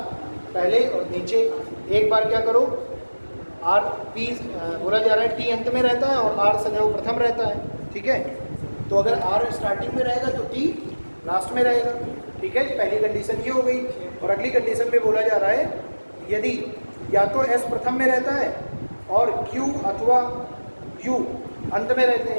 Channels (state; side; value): inverted; both; correlation -1.00